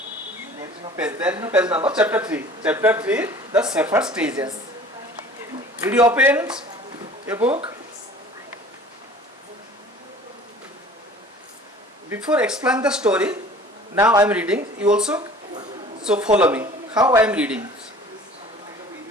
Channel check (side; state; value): both; normal; correlation 0.46